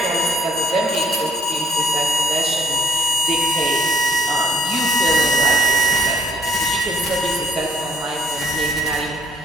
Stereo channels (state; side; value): normal; both; correlation 0.63